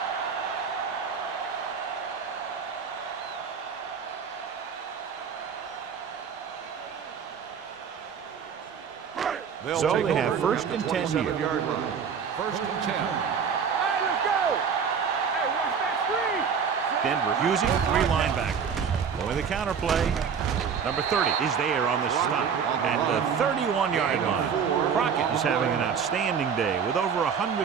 line. So they have first and 10 here. Yard line. First and 10. Hey, let's go. Hey, watch that screen. Denver using three linebackers. Going the counter play. Number 30 is there on the stop at the 31-yard line. Crockett is having an outstanding day with over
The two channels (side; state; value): left; quieter; 6.7 dB